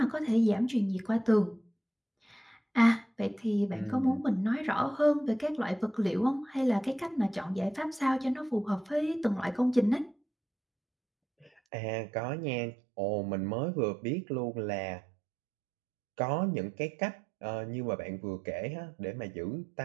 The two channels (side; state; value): left; drops out; at 11.5 s